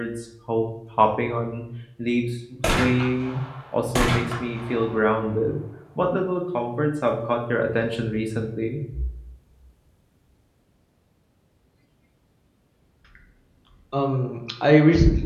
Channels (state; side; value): identical; both; correlation 1.00